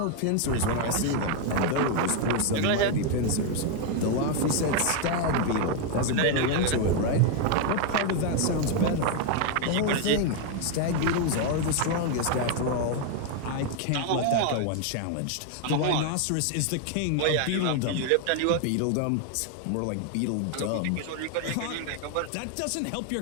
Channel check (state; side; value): different; both; correlation 0.01